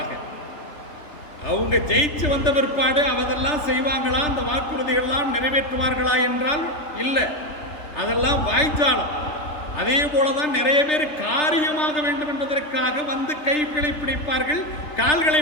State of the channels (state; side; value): late; right; 3.5 ms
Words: அவங்க ஜெயிச்சு வந்த பிற்பாடு அவதெல்லாம் செய்வாங்களா, அந்த வாக்குறுதிகள்லாம் நிறைவேற்றுவார்களா என்றால் இல்லை, அதெல்லாம் வாய்ச்சாலம். அதே போலதான் நிறைய பேர் காரியமாக வேண்டும் என்பதற்காக வந்து கைகளை பிடிப்பார்கள், கால்களை